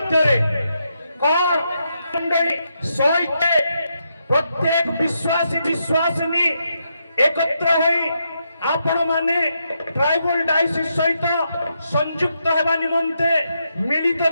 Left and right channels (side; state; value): both; inverted; correlation -0.81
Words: କଣ ମଣ୍ଡଳୀ ସହିତ ପ୍ରତ୍ୟେକ ବିଶ୍ୱାସୀ ବିଶ୍ୱାସିନୀ একত্র হই आपण माने ट्राइबल डायसिस सहित संयुक्त हेबा निमंते मिलित